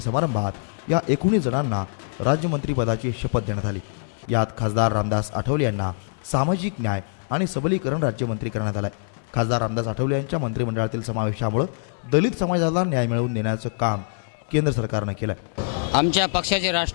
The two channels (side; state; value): right; silent; digital silence